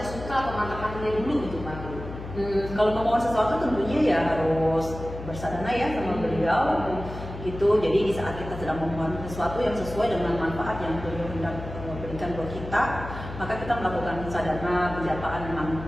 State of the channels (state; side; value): noise; left; hum, 10 dB below the sound